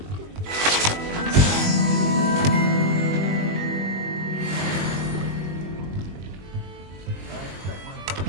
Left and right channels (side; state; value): left; late; 21 ms